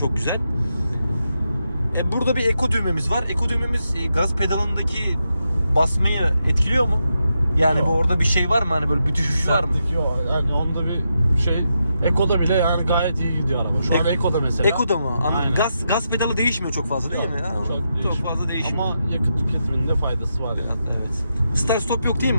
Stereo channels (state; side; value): inverted; both; correlation -0.85